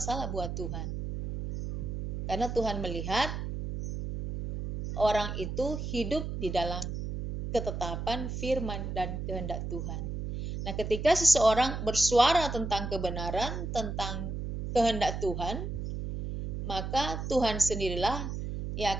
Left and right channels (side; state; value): right; noise; hum, 5 dB below the sound